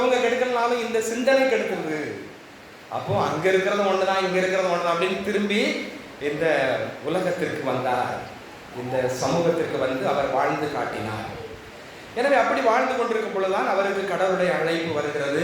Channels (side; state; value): both; identical; correlation 1.00